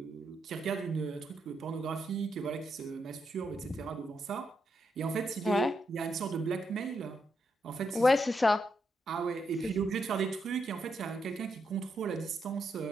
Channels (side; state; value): both; normal; correlation 0.81